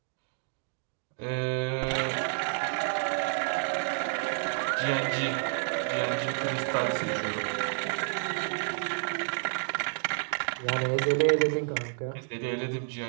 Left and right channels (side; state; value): left; silent; 58 dB below the other